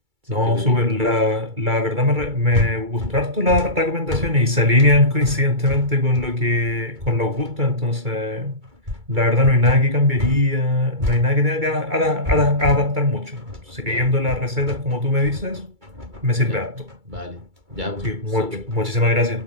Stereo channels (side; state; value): left; late; 2.3 ms